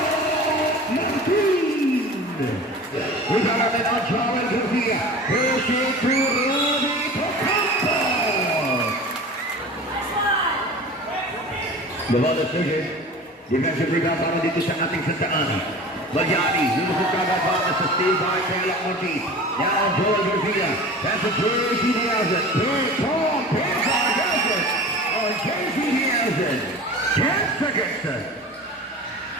Martin. We got a man on Charlie Garcia. Pushing through Ruby Ocampo. Bawal decision. Defensive rebound para dito sa ating Sta.Ana. Magyari, lulusog kagad para sa steal by Pelak Ortiz. Now Joel Garcia. That's a JC Nielsen. Third Tom Pizar has it. On JC Nielsen. 10 seconds.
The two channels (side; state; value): both; normal; correlation 0.37